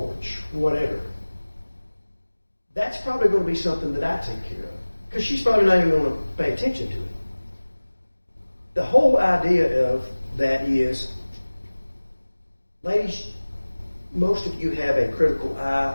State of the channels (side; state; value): both; inverted; correlation -1.00